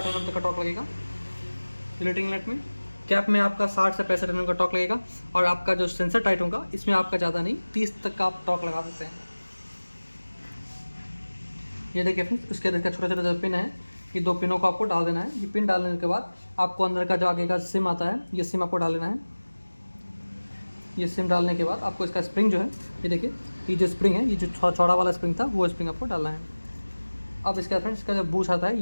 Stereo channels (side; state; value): both; inverted; correlation -1.00